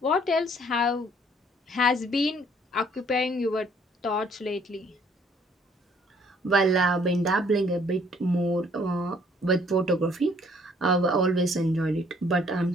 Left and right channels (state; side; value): normal; both; correlation 0.62